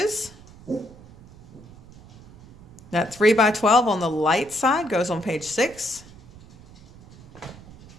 That 3x12 on the light side goes on page 6.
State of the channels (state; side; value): noise; right; rumble, 20 dB below the sound